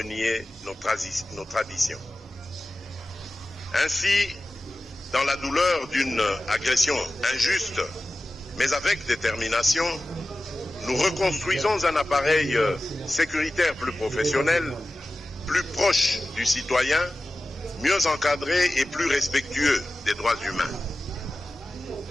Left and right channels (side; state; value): both; normal; correlation 0.95